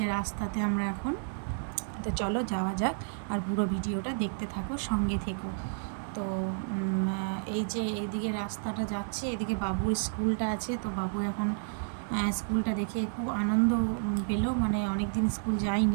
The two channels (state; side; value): silent; left; digital silence